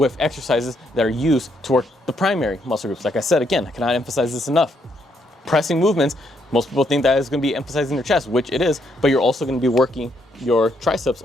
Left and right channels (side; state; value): both; normal; correlation 0.74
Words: exercises that are used to work the primary muscle groups. Like I said, again, I cannot emphasize this enough. Pressing movements, most people think that is going to be emphasizing their chest, which it is, but you're also going to be working your triceps